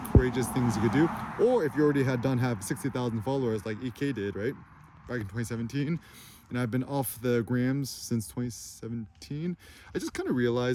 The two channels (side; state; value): both; identical; correlation 1.00